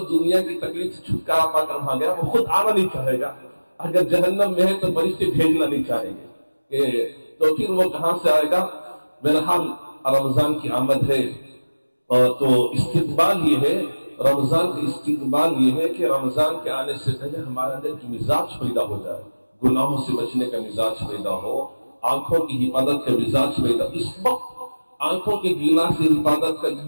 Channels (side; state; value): both; inverted; correlation -1.00